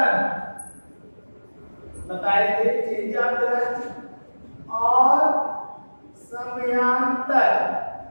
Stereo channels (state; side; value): inverted; both; correlation -1.00